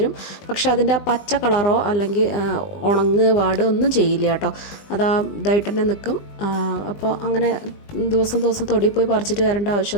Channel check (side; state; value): right; late; 20 ms